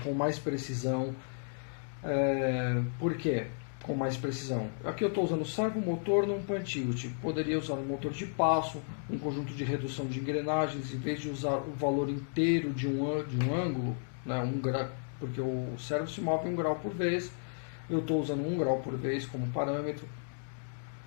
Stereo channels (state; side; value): silent; right; digital silence